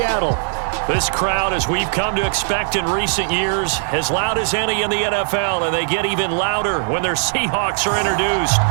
This crowd, as we've come to expect in recent years, as loud as any in the NFL, and they get even louder when their Seahawks are introduced.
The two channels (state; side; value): silent; left; digital silence